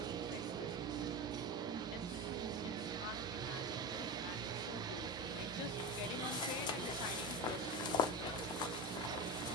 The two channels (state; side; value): noise; right; hum, 16 dB below the sound